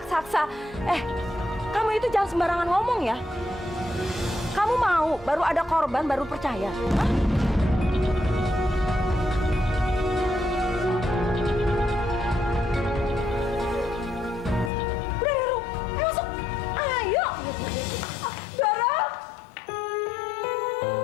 Kamu itu jangan sembarangan ngomong ya. Kamu mau baru ada korban baru percaya? Hah? Udah, Doro. Ayo masuk. Ayo. Doro.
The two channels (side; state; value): right; drops out; at 14.7 s